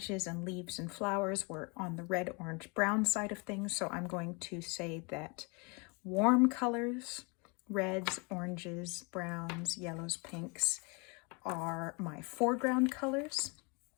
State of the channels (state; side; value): quieter; right; 31.3 dB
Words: and leaves and flowers were on the red, orange, brown side of things. So I'm going to say that warm colors, reds, oranges, browns, yellows, pinks, are my foreground colors.